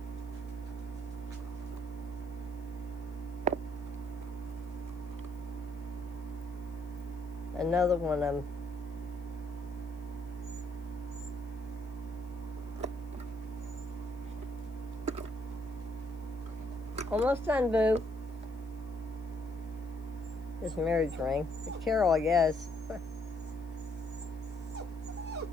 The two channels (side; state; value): left; noise; hiss, 30 dB below the sound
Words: Another one of them. Almost done, Boo. This marriage ring. The Carol, I guess.